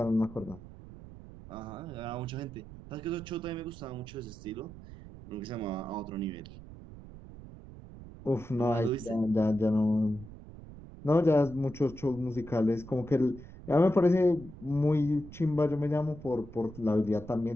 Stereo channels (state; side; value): noise; right; rumble, 16 dB below the sound